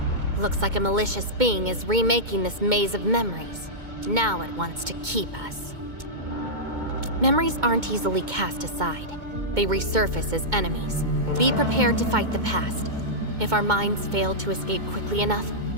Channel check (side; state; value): left; late; 2.2 ms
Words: Looks like a malicious being is remaking this maze of memories. Now it wants to keep us. Memories aren't easily cast aside. They resurface as enemies. Be prepared to fight the past. If our minds fail to escape quickly enough,